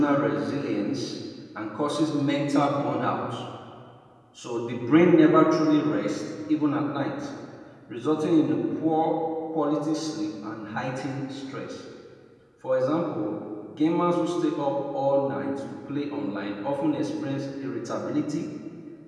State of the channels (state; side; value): identical; both; correlation 1.00